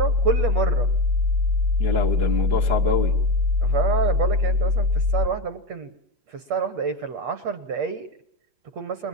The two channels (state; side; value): late; left; 8.4 ms